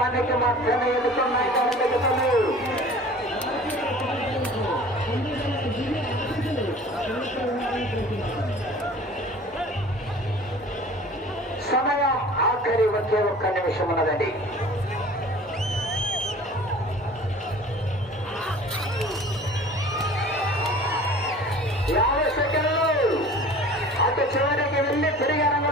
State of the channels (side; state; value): both; normal; correlation 0.45